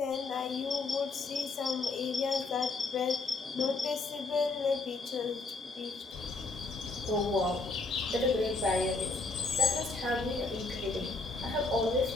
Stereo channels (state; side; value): quieter; right; 3.6 dB